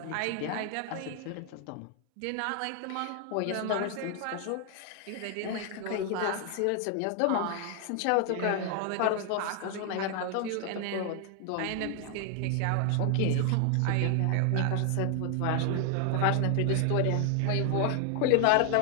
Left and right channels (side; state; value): both; different; correlation 0.00